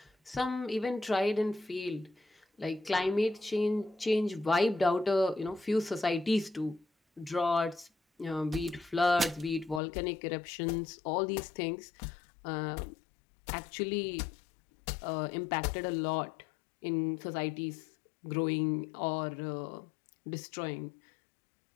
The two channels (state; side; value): drops out; right; at 9.8 s